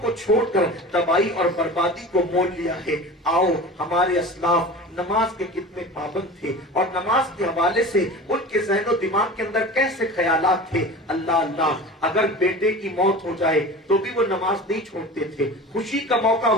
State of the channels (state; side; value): normal; both; correlation 0.35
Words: کو چھوڑ کر تباہی اور بربادی کو مول لیا ہے۔ آؤ، ہمارے اسلاف نماز کے کتنے پابند تھے اور نماز کے حوالے سے ان کے ذہن و دماغ کے اندر کیسے خیالات تھے۔ اللہ اللہ، اگر بیٹے کی موت ہو جائے تو بھی وہ نماز نہیں چھوڑتے تھے، خوشی کا موقع